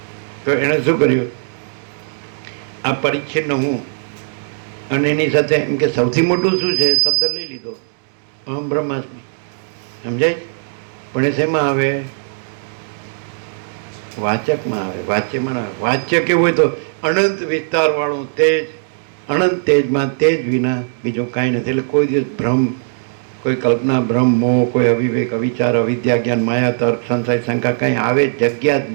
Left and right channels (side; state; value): left; silent; digital silence